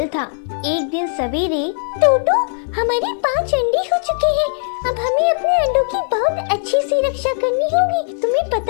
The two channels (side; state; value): right; silent; 65 dB below the other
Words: था। एक दिन सवेरे, टोटो, हमारे 5 अंडे हो चुके हैं। अब हमें अपने अंडों की बहुत अच्छी सी रक्षा करनी होगी। तुम्हें